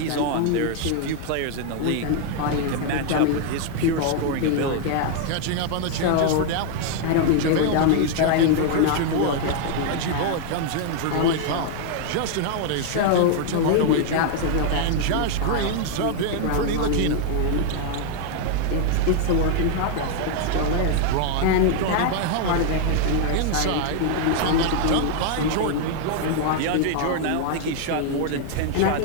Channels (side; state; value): both; different; correlation 0.00